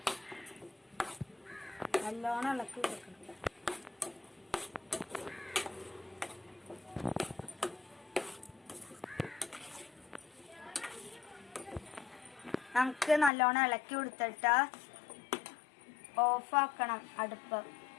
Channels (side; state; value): right; drops out; at 13.3 s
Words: നല്ലോണം ഇളക്കി കൊടുക്കണം. നമുക്ക് നല്ലോണം ഇളക്കി കൊടുത്തിട്ട് ഓഫാക്കണം അടുപ്പ്.